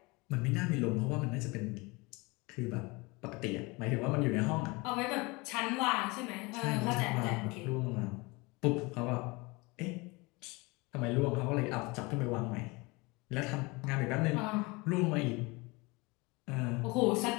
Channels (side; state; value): right; quieter; 25.5 dB